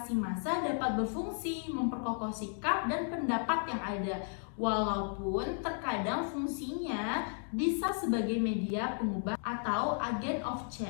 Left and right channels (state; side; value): silent; right; 55 dB below the other